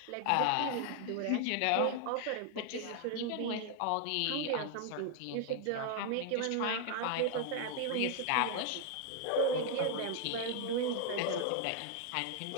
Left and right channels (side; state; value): both; different; correlation 0.00